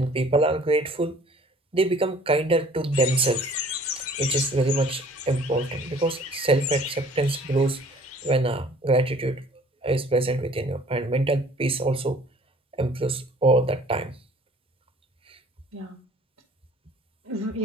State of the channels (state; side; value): normal; both; correlation 0.53